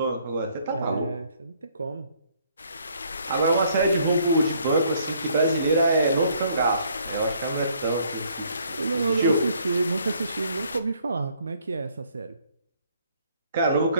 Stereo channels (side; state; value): both; inverted; correlation -0.65